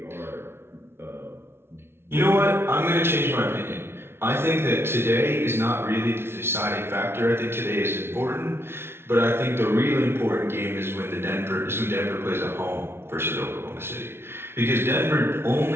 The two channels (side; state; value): left; late; 0.12 ms